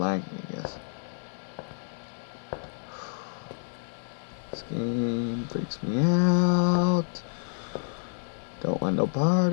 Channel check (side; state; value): right; silent; digital silence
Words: I guess. This game freaks me out. Don't want no part